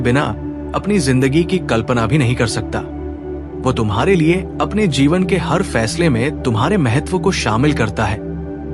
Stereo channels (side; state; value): both; identical; correlation 1.00